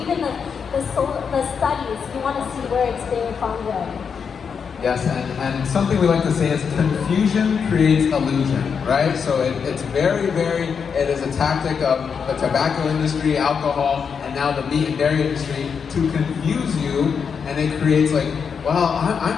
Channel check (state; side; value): quieter; right; 6.4 dB